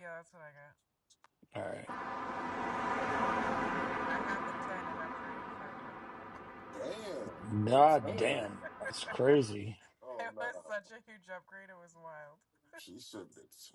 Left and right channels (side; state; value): both; identical; correlation 1.00